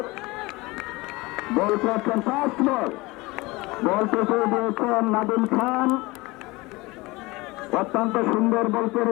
বল করছেন ফাস্ট বল, বল পেছনে দিয়েছেন নাদিম খান, অত্যন্ত সুন্দর বল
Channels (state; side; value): quieter; right; 22.4 dB